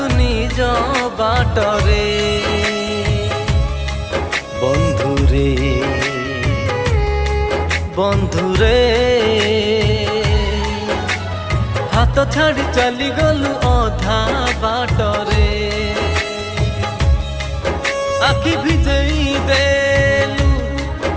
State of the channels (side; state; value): both; identical; correlation 1.00